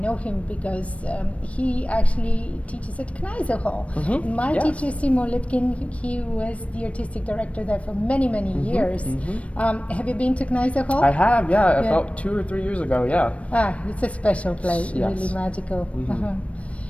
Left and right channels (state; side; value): late; right; 0.064 ms